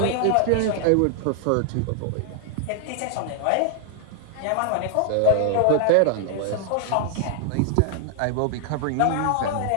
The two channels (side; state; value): both; different; correlation 0.00